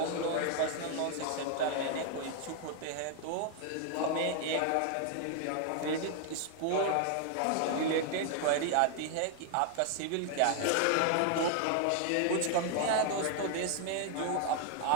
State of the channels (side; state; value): both; different; correlation 0.00